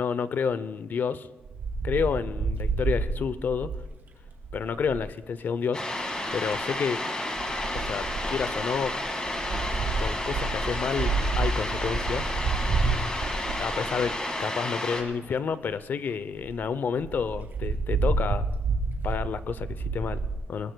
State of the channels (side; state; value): both; normal; correlation 0.74